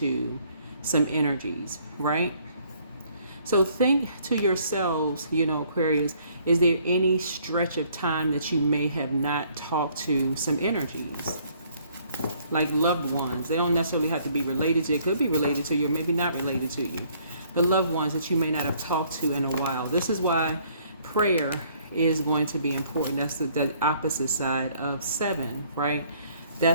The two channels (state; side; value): inverted; both; correlation -0.63